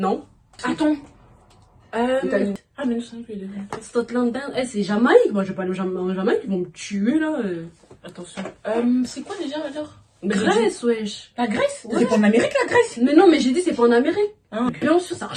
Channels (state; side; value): identical; both; correlation 1.00